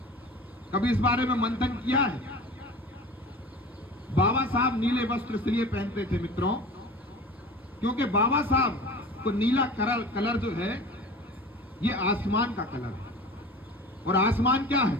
कभी इस बारे में मंथन किया है? बाबा साहब नीले वस्त्र इसलिए पहनते थे मित्रों, क्योंकि बाबा साहब को नीला कलर जो है ये आसमान का कलर है, और आसमान क्या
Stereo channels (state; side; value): normal; both; correlation 0.38